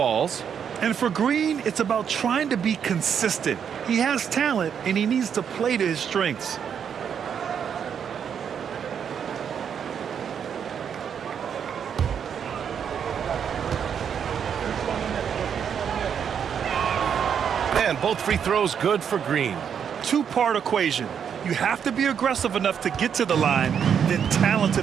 And for Green, it's about trying to be consistent. He has talent, and he needs to play to his strengths. And both free throws good for Green. 2-part equation. You have to be aggressive enough to get to the line, then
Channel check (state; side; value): quieter; left; 7.8 dB